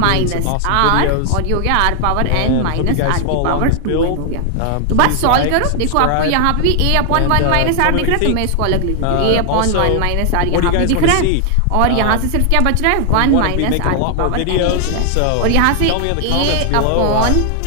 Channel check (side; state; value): both; different; correlation 0.00